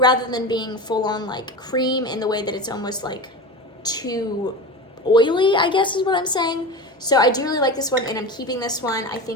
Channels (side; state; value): both; normal; correlation 0.27